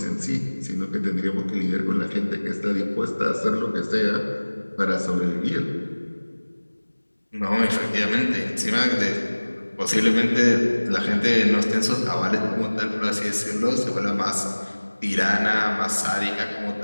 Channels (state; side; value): inverted; both; correlation -1.00